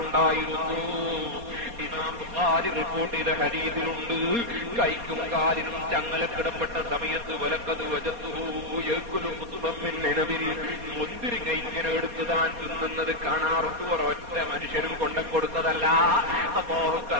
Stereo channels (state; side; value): late; left; 4.2 ms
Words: ഇമാം ബുഖാരി റിപ്പോർട്ട് ചെയ്ത ഹദീസിലുണ്ട്, കൈക്കും കാലിനും ചങ്ങലക്കിടപ്പെട്ട സമയത്ത് വലക്കത് മുന്തിരിങ്ങ ഇങ്ങനെ എടുത്ത് താൻ തിന്നുന്നത് കാണാറുണ്ട്. ഒരൊറ്റ മനുഷ്യനും കൊണ്ടുകൊടുത്തതല്ല, അല്ലാഹു